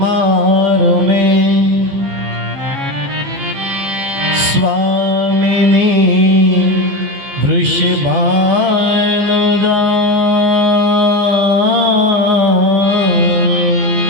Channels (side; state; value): left; late; 14 ms